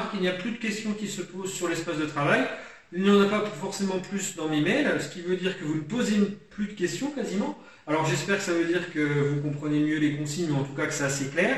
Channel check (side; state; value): both; identical; correlation 1.00